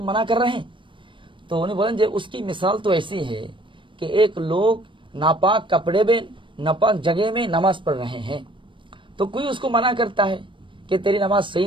मना कर रहे हैं। तो उन्हें बोलें जे उसकी मिसाल तो ऐसी है कि एक लोग नापाक कपड़े में, नापाक जगह में नमाज पढ़ रहे हैं, तो कोई उसको मना करता है कि तेरी नमाज सही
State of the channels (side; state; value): left; late; 0.24 ms